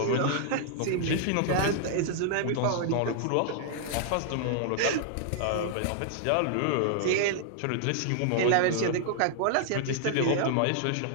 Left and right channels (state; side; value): different; both; correlation -0.01